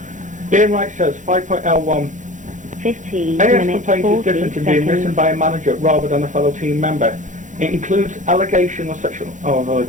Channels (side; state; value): left; late; 0.36 ms